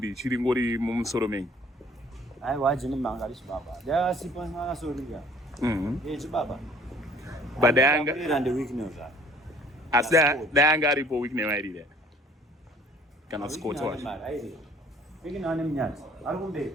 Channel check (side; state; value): both; normal; correlation 0.55